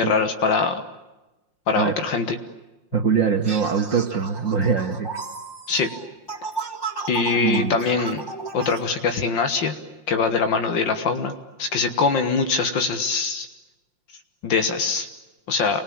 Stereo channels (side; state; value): right; late; 5.7 ms